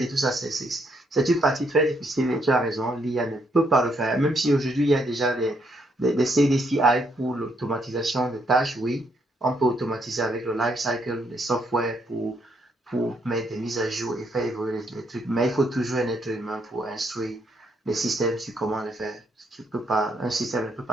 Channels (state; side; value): normal; both; correlation 0.73